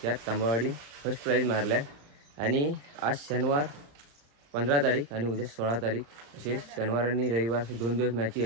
त्यात तांबवाडी फर्स्ट प्राईज मारल्या आणि आज शनिवार 15 तारीख आणि उद्या 16 तारीख असे शनिवार आणि रविवार असे 2 दिवस मॅची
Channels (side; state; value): left; late; 35 ms